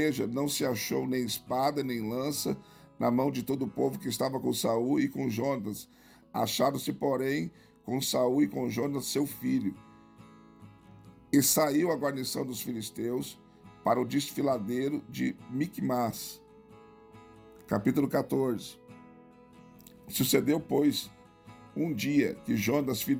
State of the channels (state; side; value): identical; both; correlation 1.00